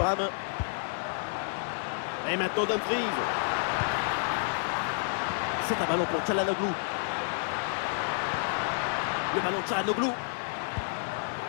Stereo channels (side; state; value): right; silent; digital silence